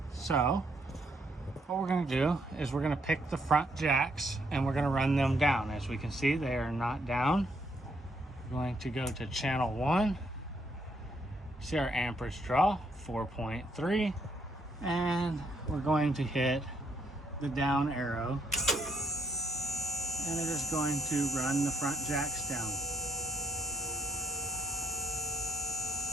So what we're going to do is we're going to pick the front jacks and we're going to run them down. As we can see, they are not down. We're going to go to channel 1. See our amperage draw, 4.3. And we're going to hit the down arrow. And it is going to run the front jacks down.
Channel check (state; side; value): normal; both; correlation 0.73